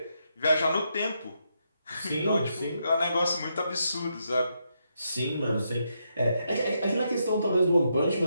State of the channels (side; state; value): both; inverted; correlation -0.80